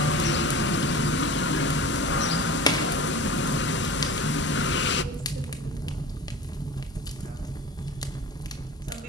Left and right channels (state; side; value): normal; both; correlation 0.35